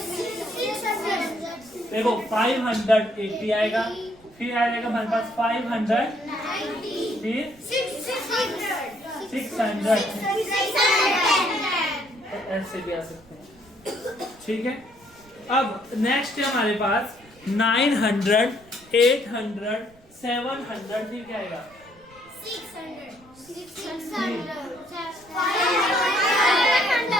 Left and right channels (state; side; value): noise; right; rumble, 27 dB below the sound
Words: देखो 580 आएगा, फिर आएगा हमारे पास 500, फिर 600, ऐसे भी आ सकते हैं। ठीक है, अब नेक्स्ट है हमारे पास 900, 800, 700, फिर क्या आएगा? 600,